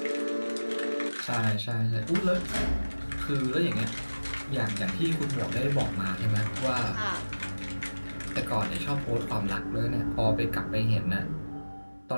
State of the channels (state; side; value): inverted; both; correlation -1.00